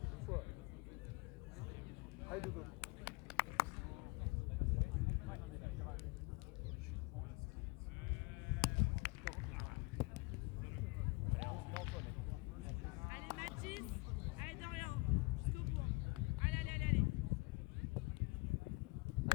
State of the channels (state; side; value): quieter; right; 26.0 dB